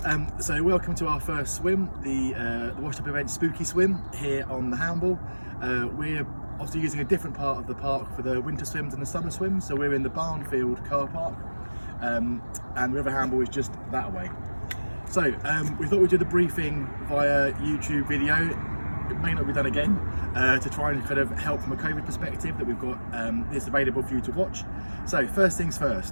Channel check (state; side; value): inverted; both; correlation -1.00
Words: So welcome to our first swim, the WashedUp Events Spooky Swim here on the Hamble. We're obviously using a different part of the park for the winter swims and the summer swims, so we're in the Barnfield car park and River Hamble is just that way. So we thought we'd do the briefing via YouTube video. It may not be done again, to try and kind of help from a COVID perspective that we've got this available for you to watch. So first things